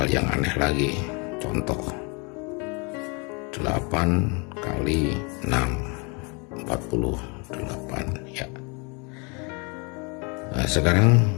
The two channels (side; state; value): right; quieter; 32.1 dB